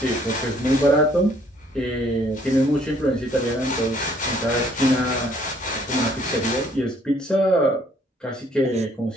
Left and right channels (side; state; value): both; normal; correlation 0.63